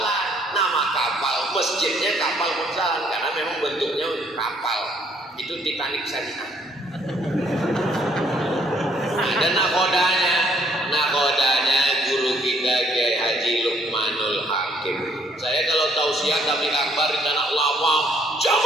Nama kapal, masjidnya Kapal Monsala karena memang bentuknya kapal. Itu Titanic syariah. Ada nakodanya guru kita Kiai Haji Lukmanul Hakim. Saya kalau tausiah tabligh akbar di tanah lawang,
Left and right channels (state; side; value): normal; both; correlation 0.66